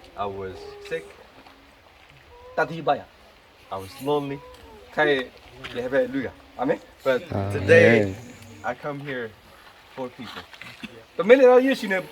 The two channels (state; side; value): identical; both; correlation 1.00